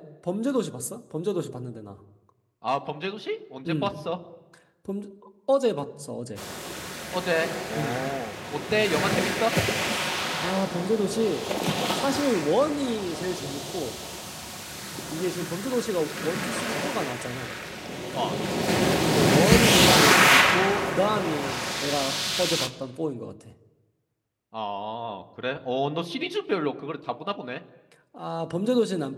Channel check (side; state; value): both; identical; correlation 1.00